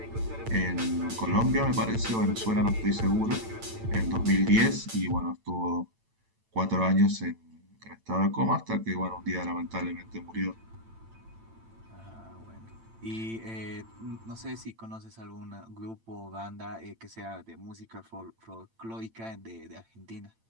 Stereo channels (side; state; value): left; late; 8.9 ms